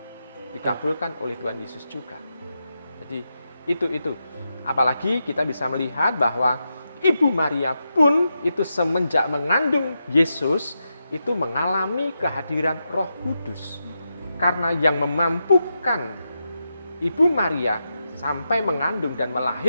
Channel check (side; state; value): both; inverted; correlation -0.87